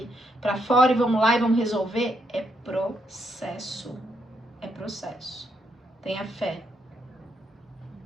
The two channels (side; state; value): both; normal; correlation 0.77